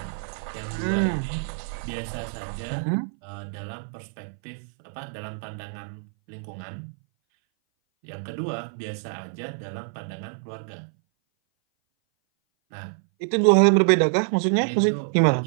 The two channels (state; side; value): silent; left; 58 dB below the other